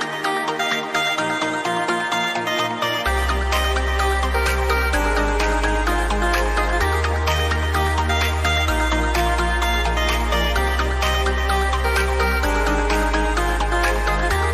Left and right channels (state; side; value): identical; both; correlation 1.00